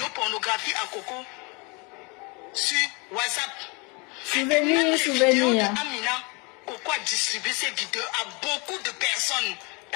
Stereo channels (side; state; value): right; quieter; 30.2 dB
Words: pornographiques à Coco sur WhatsApp. Souvenir. Amina, Coco a distribué ces vidéos à beaucoup de personnes.